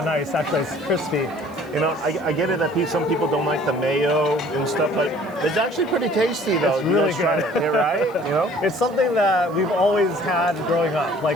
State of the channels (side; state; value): left; noise; hiss, 28 dB below the sound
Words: nice. Actually, it's crispy. You know, I get it that some people don't like the mayo and stuff, but it's actually pretty tasty though. It's You really guys try good. it, yeah, right? You know? It's something that we've always had growing up.